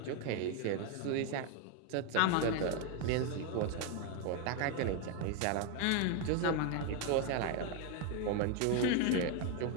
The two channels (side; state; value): both; different; correlation 0.01